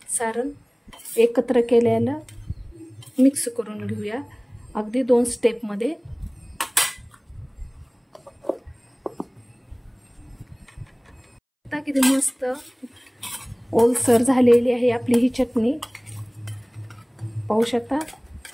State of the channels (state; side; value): identical; both; correlation 1.00